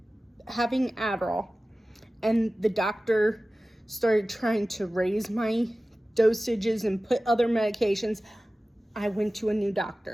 having Adderall, and the doctor started trying to raise my dosages and put other medications. I went to a new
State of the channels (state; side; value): normal; both; correlation 0.96